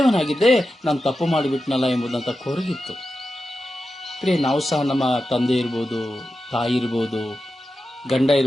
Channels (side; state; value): both; normal; correlation 0.91